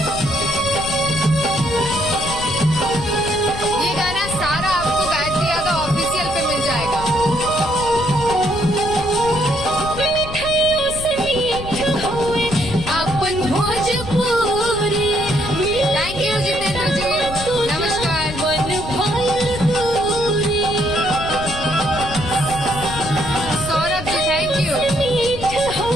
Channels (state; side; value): noise; left; rumble, 10 dB below the sound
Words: ये गाना सारा आपको गायत्री यादव ऑफिशियल पे मिल जाएगा। मिठाइयों से मीठ होए अपन भोजपुरी। थैंक यू जितेंद्र जी, नमस्कार। मन भइल दूरी, सौरभ जी थैंक यू। मीठ